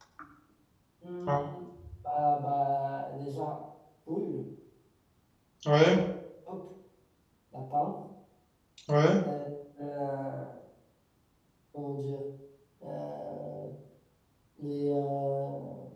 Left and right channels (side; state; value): both; identical; correlation 1.00